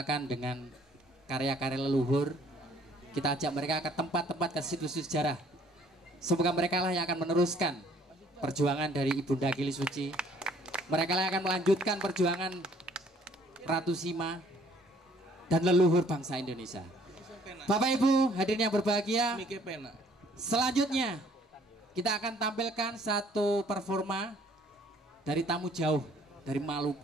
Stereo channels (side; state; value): both; normal; correlation 0.60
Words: dengan karya-karya leluhur. Kita ajak mereka ke tempat-tempat, ke situs sejarah. Semoga mereka lah yang akan meneruskan perjuangan dari Ibunda Kili Suci. Mereka yang akan melanjutkan perjuangan Ratu Sima dan leluhur bangsa Indonesia. Bapak Ibu hadirin yang berbahagia, selanjutnya kita akan tampilkan satu performa dari tamu jauh dari